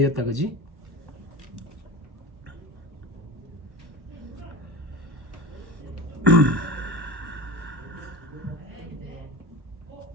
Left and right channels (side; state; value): left; late; 1.1 ms